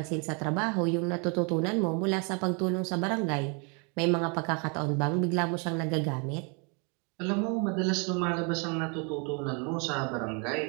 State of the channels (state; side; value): quieter; left; 34.5 dB